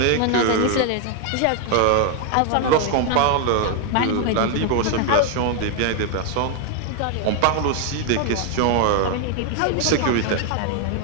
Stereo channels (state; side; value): different; both; correlation 0.01